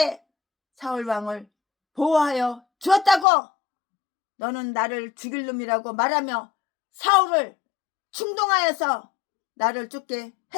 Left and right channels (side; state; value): right; drops out; at 3.2 s